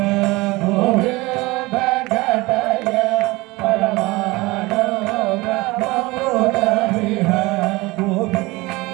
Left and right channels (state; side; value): quieter; left; 22.1 dB